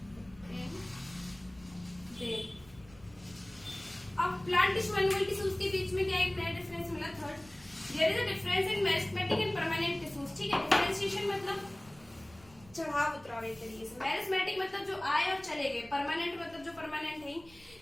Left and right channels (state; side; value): noise; right; rumble, 24 dB below the sound